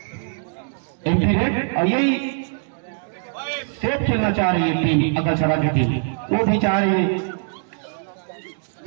एमपी रेड और यही सेफ खेलना चाह रही है टीम अकलछड़ा की टीम, वो भी चाह रही है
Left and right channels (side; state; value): left; silent; digital silence